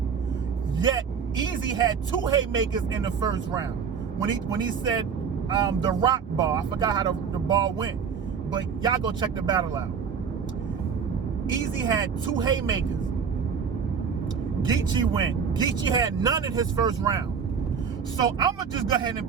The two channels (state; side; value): quieter; left; 6.5 dB